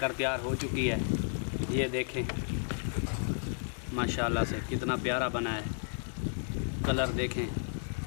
तैयार हो चुकी है। ये देखें माशाल्लाह से कितना प्यारा बना है। कलर देखें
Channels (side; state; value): right; silent; digital silence